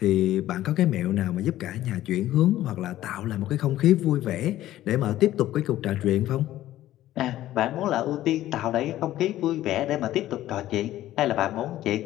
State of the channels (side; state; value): right; quieter; 14.1 dB